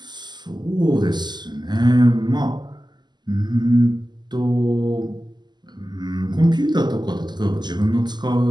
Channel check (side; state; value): left; late; 0.21 ms